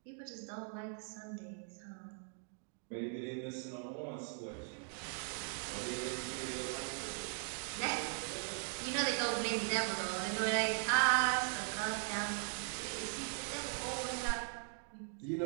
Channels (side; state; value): left; silent; 51 dB below the other